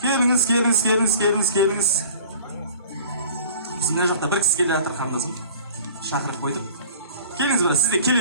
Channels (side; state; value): both; inverted; correlation -0.46